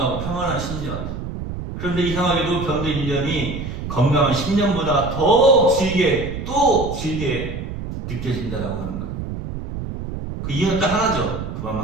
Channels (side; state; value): right; noise; rumble, 7 dB below the sound